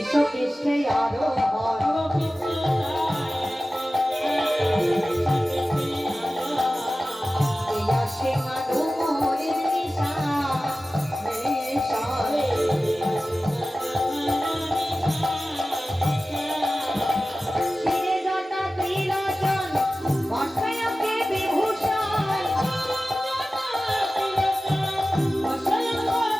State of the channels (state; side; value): normal; both; correlation 0.96